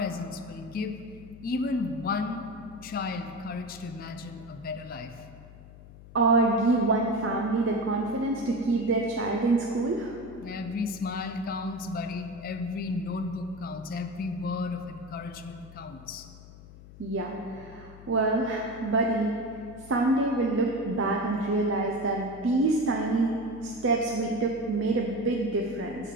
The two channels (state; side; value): noise; left; hum, 18 dB below the sound